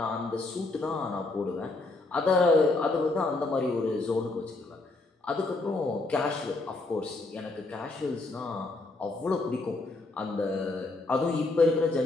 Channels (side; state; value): right; quieter; 3.2 dB